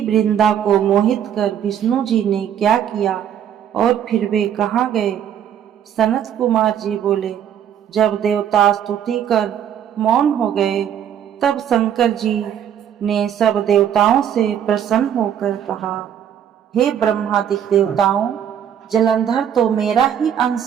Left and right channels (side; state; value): left; quieter; 9.3 dB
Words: को मोहित कर विष्णु जी ने क्या किया और फिर वे कहाँ गए। सनत कुमार जी बोले, जब देवता स्तुति कर मौन हो गए, तब शंकर जी ने सब देवताओं से प्रसन्न होकर कहा, हे ब्रह्मादि देवताओं, जलंधर तो मेरा ही